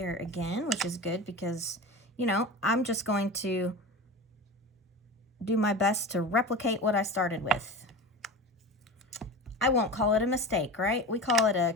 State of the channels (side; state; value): both; normal; correlation 0.30